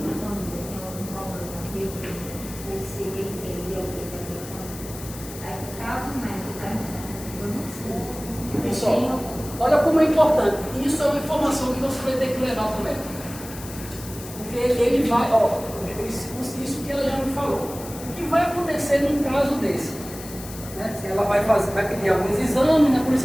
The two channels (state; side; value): noise; left; hiss, 14 dB below the sound